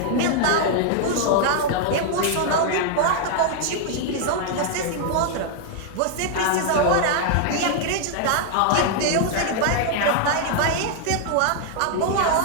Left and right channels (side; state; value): both; different; correlation 0.00